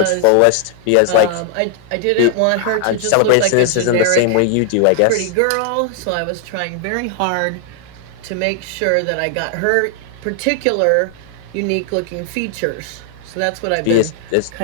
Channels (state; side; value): different; both; correlation 0.00